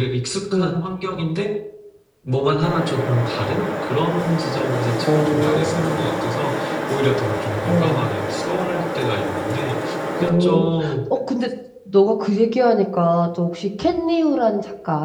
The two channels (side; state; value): both; identical; correlation 1.00